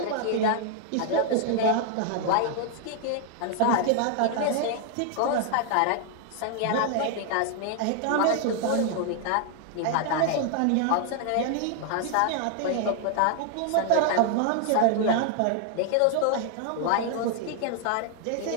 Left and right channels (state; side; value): different; both; correlation 0.00